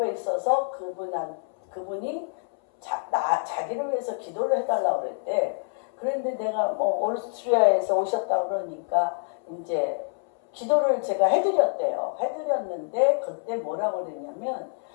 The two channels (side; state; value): right; silent; 60 dB below the other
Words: 있어서 그분이 자기를 위해서 기도를 해달라고 그랬대. 그런데 내가 오스트리아에서 오셨다고 그러니까 이제 기도를 제가 해드렸대요. 해드렸는데 그때 뭐라고 그랬냐면